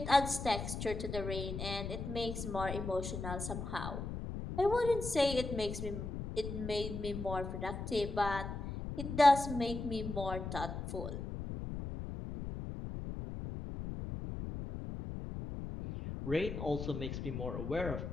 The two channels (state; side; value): noise; left; rumble, 6 dB below the sound